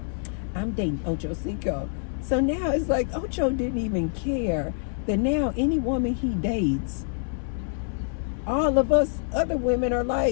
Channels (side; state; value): right; silent; 61 dB below the other